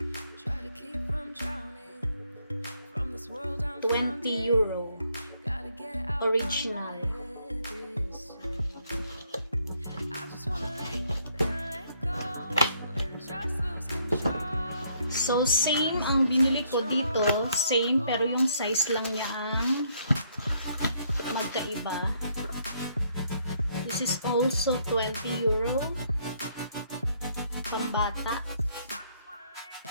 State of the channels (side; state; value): both; inverted; correlation -0.69